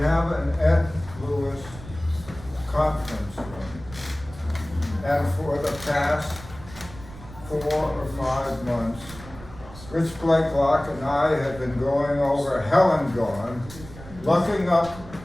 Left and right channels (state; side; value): noise; right; rumble, 16 dB below the sound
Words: an Ed Lewis conference room. And for the past 4 or 5 months, Rich Blakelock and I have been going over Hell and Gone, looking up